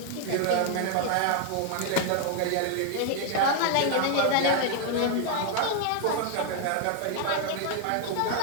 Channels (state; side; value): different; both; correlation 0.00